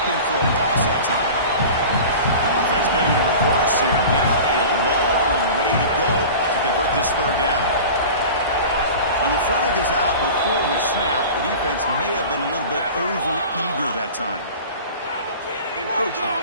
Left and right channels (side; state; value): both; inverted; correlation -0.37